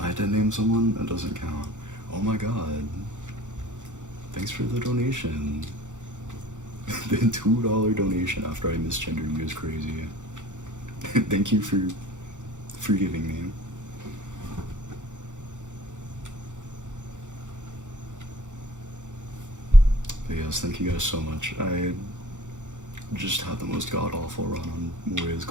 did name someone, that doesn't count. Oh my god. Thanks for the donation. The $2 donation after I misgendered you is crazy. Thank you for forgiving me. But yes, thank you guys so much. I just had the most god-awful run on Moria's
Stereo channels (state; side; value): late; left; 0.85 ms